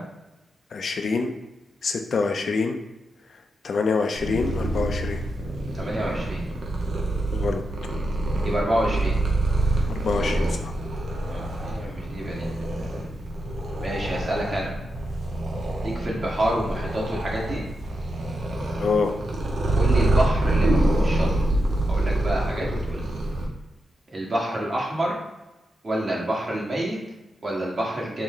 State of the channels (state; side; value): normal; both; correlation 0.86